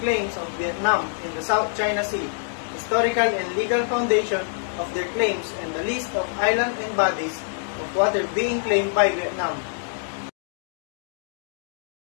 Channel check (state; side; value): silent; right; digital silence